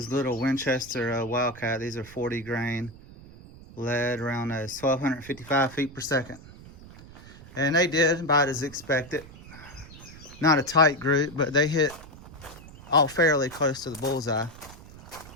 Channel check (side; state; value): right; noise; rumble, 18 dB below the sound